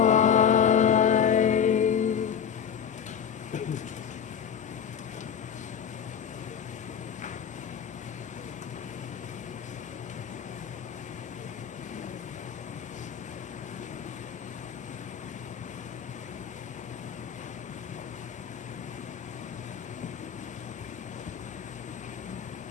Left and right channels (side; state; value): right; quieter; 8.0 dB